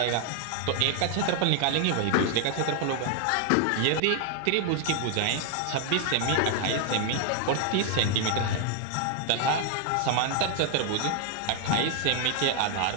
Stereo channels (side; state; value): both; different; correlation 0.00